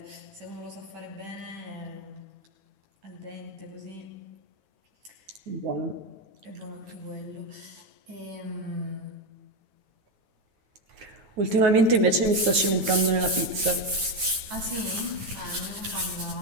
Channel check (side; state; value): left; late; 9.3 ms